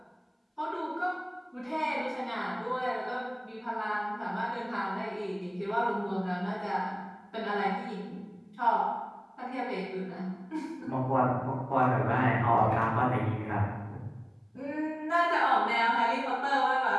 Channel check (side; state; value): both; identical; correlation 1.00